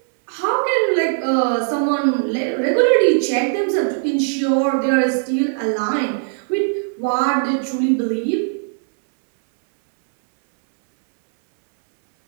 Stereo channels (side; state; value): left; silent; 65 dB below the other